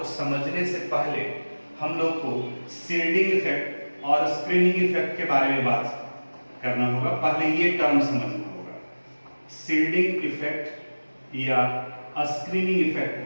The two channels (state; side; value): inverted; both; correlation -1.00